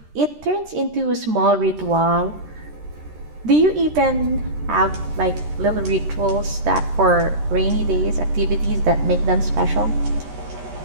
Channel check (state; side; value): late; left; 13 ms